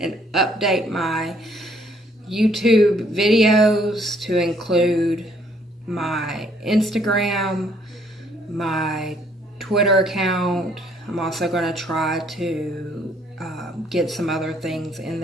update my YouTube videos to include my Instagram, my Twitter account. I'm also going to try to get some other things in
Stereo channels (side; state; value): both; normal; correlation 0.65